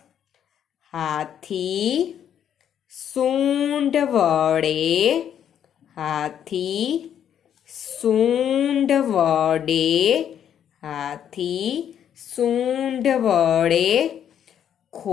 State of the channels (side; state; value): right; quieter; 9.4 dB